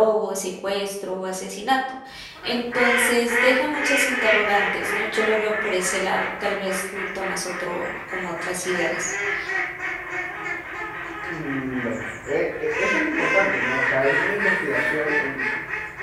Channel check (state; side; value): identical; both; correlation 1.00